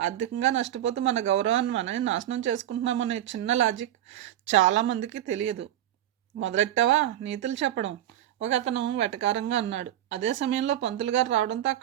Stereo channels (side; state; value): left; quieter; 12.4 dB